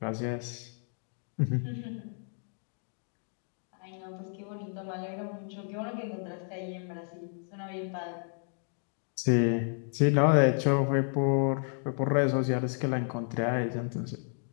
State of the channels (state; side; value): silent; right; 57 dB below the other